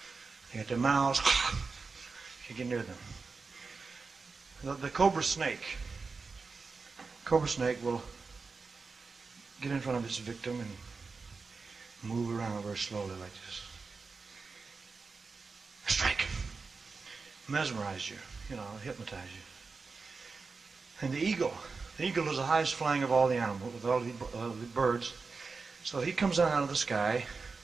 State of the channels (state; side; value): quieter; left; 4.5 dB